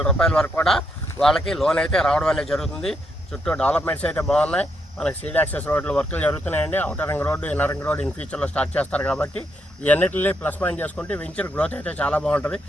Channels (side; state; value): both; normal; correlation 0.78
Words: రూపాయల వరకు కూడా వాళ్ళకి లోన్ అయితే రావడం అనేది జరుగుతుంది. చుట్టూ డెవలప్మెంట్స్ అయితే బాగున్నాయి. మనకి సీడ్ యాక్సెస్ రోడ్లు వర్కులు జరుగుతున్నాయండి. Outer ring road, inner ring road in ఫ్యూచర్లో స్టార్ట్ చేస్తారు. కాబట్టి ఇవన్నిటిని ప్లస్ పాయింట్ చేసుకుంటే వెంచర్ గ్రోత్ అయితే చాలా బాగుంటుంది.